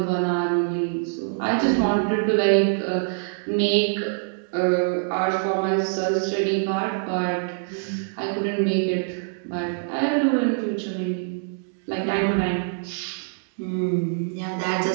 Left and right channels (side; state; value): left; silent; digital silence